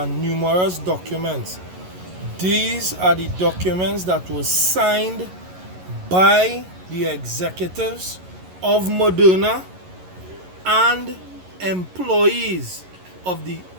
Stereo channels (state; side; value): late; left; 11 ms